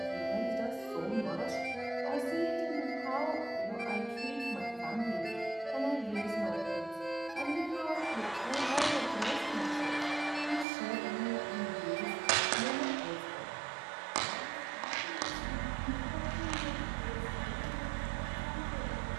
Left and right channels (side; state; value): left; drops out; at 10.7 s